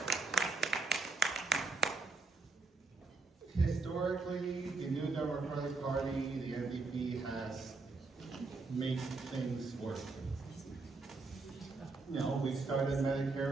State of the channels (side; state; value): left; quieter; 3.8 dB